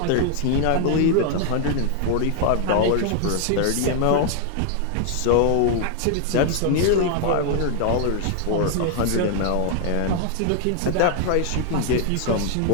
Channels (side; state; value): both; different; correlation 0.00